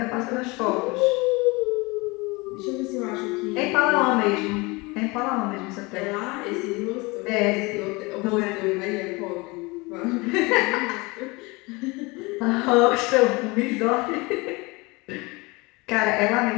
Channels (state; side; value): quieter; right; 25.1 dB